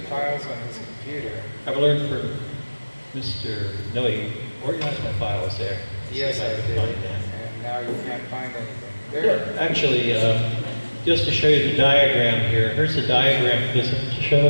files on his computer. I've learned from Mr. Noe, organize my files there. Yes, I can did. find that. And now you can't find anything. There. Actually, just to show you the diagram here, here's the diagram. Does it show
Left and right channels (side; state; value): both; inverted; correlation -1.00